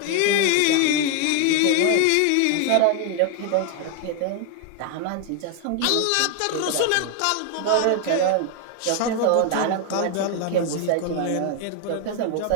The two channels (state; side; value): different; both; correlation 0.01